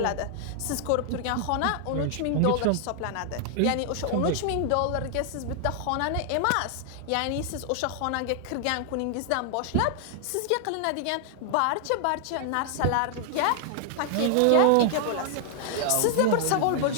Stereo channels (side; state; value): both; different; correlation 0.00